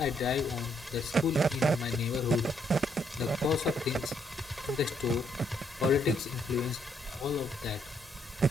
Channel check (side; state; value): both; normal; correlation 0.72